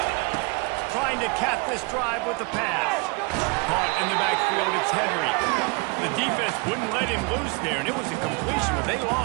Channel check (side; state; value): left; quieter; 30.5 dB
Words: Trying to cap this drive with the pass. Caught in the backfield, it's Henry. The defense wouldn't let him loose there, and it was a completion, but they